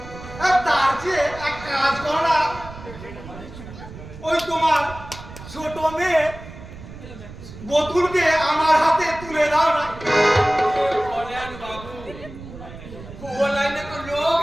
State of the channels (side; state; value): right; noise; rumble, 15 dB below the sound